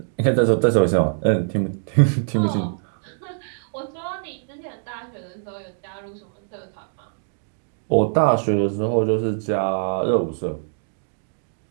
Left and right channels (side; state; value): left; silent; digital silence